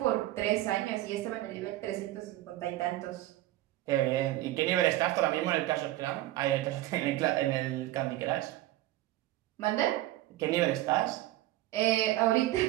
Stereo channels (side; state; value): left; quieter; 15.8 dB